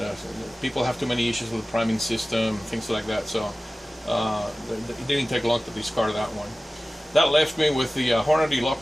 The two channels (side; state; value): both; normal; correlation 0.97